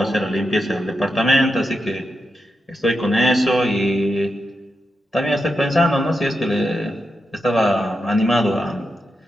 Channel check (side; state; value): both; normal; correlation 0.87